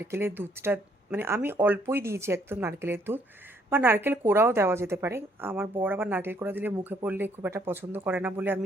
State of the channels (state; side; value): normal; both; correlation 0.67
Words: দুধটা, মানে আমি অল্পই দিয়েছি একদম নারকেলের দুধ, বা নারকেল কোড়াও দেওয়া যেতে পারে। আমার বর আবার নারকেল কোড়া দিলে মুখে পড়লে খুব একটা পছন্দ করে না বলে